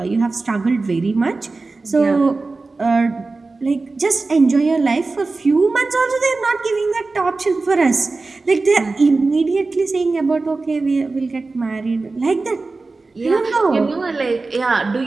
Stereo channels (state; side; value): quieter; left; 3.7 dB